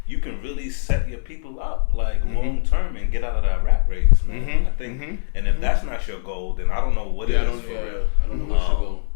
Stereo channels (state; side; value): silent; right; 64 dB below the other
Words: you can really set your people up like long term and get out of that rat race, man. I think, and if that's not your goal, then I don't know what it is for real. I don't know what's your goal.